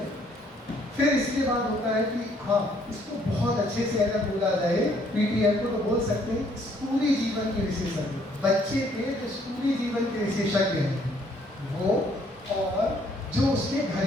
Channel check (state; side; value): normal; both; correlation 0.65